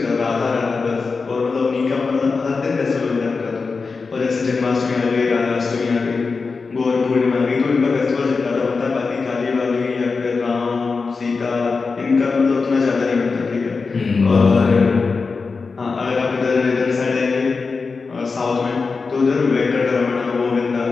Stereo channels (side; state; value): right; quieter; 4.5 dB